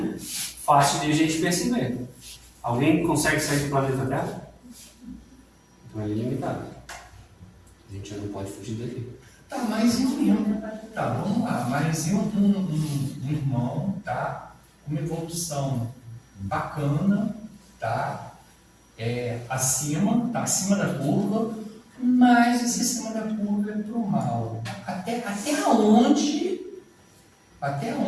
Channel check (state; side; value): identical; both; correlation 1.00